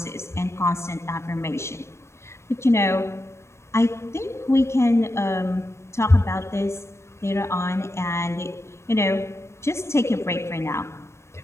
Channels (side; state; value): right; late; 0.13 ms